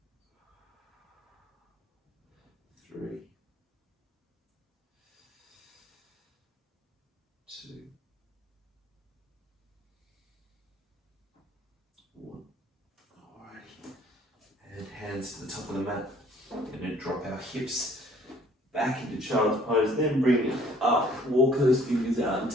3, 2, 1. Alrighty. And hands to the top of the mat. I'm going to drop our hips back into child's pose, then bring it up, walk those fingers out and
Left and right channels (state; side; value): normal; both; correlation 0.58